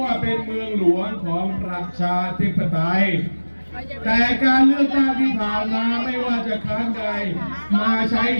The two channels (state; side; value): inverted; both; correlation -1.00